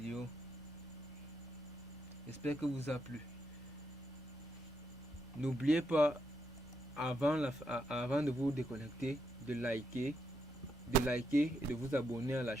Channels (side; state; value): both; normal; correlation 0.80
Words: J'espère que vous a plu. N'oubliez pas, avant de vous déconnecter, de liker et de vous abonner à la